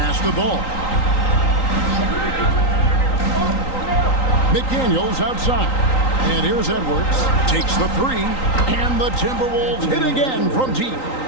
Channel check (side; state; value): right; late; 3.9 ms